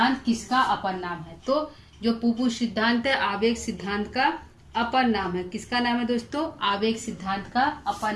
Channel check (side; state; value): both; identical; correlation 1.00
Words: किसका अपर नाम है? तो जो पुपू सिद्धांत है आवेग सिद्धांत का अपर नाम है। किसका नाम है दोस्तों? आवेग सिद्धांत का अपर